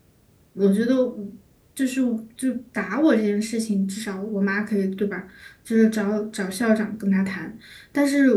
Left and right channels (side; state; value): both; identical; correlation 1.00